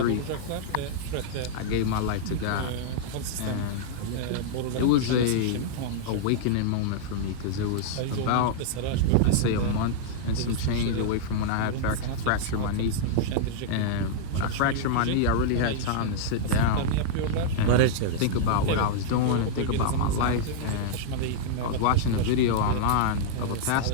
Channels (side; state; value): both; different; correlation -0.01